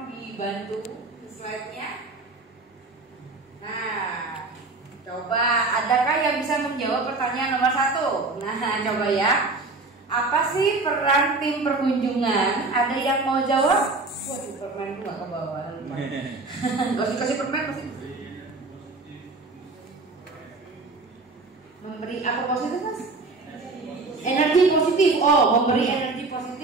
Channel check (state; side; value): quieter; left; 3.5 dB